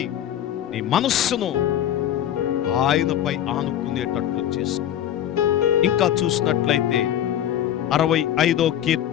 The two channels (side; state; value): right; quieter; 10.9 dB